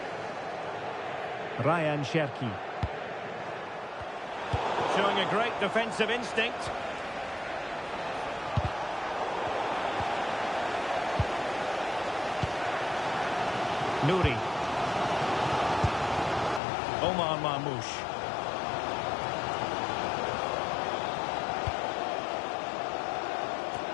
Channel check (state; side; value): drops out; right; at 16.6 s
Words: Ryan Cherki. Showing a great defensive instinct. Nouri. Omar Marmoush.